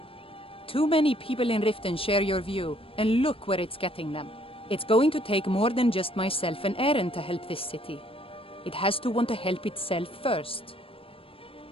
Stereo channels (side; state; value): right; late; 0.27 ms